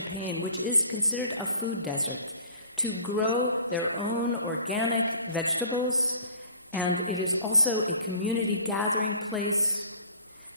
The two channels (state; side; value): inverted; both; correlation -0.48